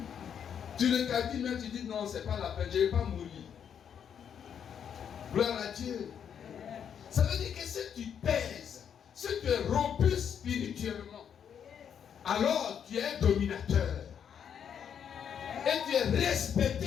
Tu le calcules, mais tu dis non, c'est pas la peine, je ne vais pas mourir. Gloire à Dieu. Ça veut dire que si tu pèses, si tu es robuste spirituellement, alors tu es dominateur. Et tu es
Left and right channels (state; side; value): quieter; right; 8.2 dB